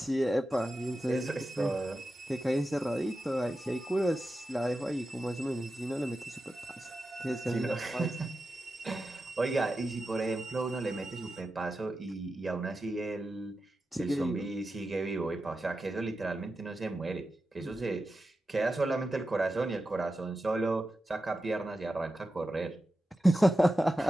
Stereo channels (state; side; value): normal; both; correlation 0.91